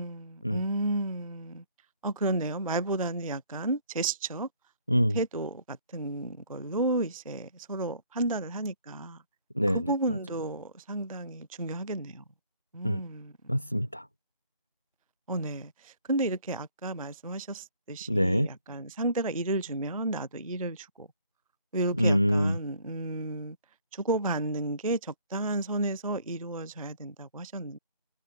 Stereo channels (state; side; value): inverted; both; correlation -0.61